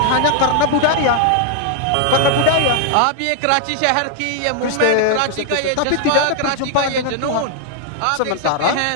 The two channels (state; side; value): different; both; correlation -0.01